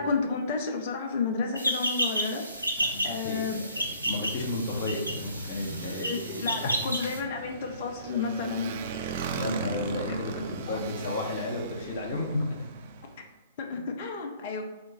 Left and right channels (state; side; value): inverted; both; correlation -0.56